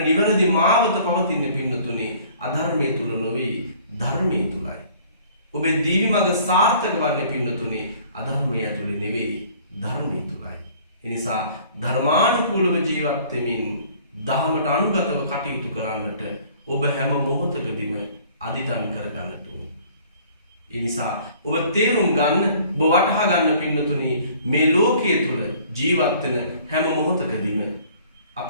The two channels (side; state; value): both; inverted; correlation -0.54